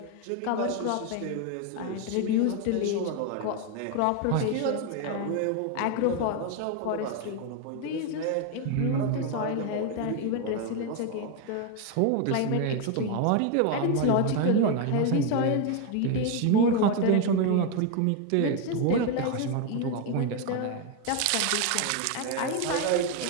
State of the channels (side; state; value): both; different; correlation 0.01